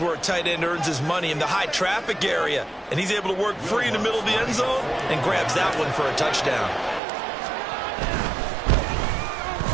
where a tight end earns his money in the high traffic area. And he's able to work free in the middle of the end zone and grabs that one for a touchdown.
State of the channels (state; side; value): drops out; left; at 7.0 s